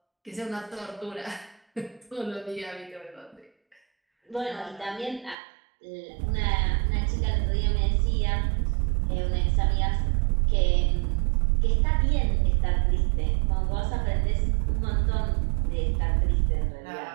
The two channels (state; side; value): drops out; left; at 5.4 s